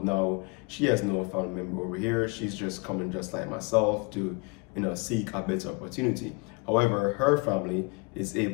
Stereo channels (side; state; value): right; quieter; 30.1 dB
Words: Now, she has no family member over here. She's just coming just like myself to seek a better opportunity. However, her family is